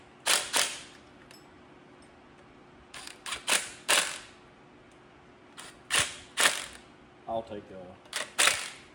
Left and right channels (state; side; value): identical; both; correlation 1.00